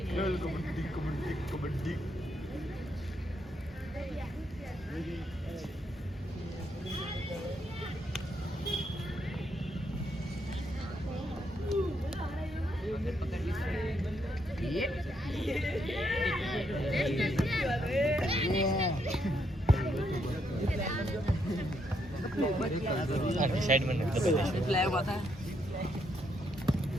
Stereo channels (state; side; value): normal; both; correlation 0.76